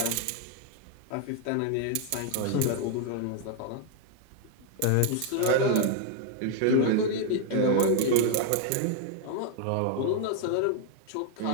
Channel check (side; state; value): both; different; correlation 0.00